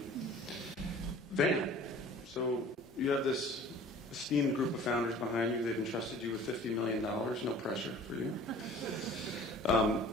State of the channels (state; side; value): normal; both; correlation 0.47